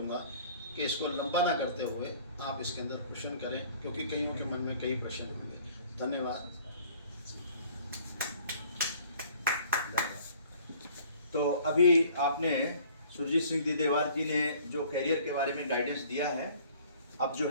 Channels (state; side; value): inverted; both; correlation -0.54